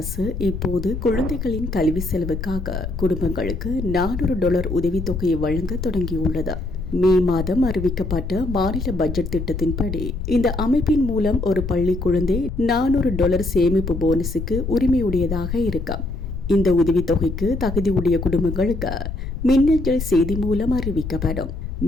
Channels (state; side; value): noise; left; rumble, 6 dB below the sound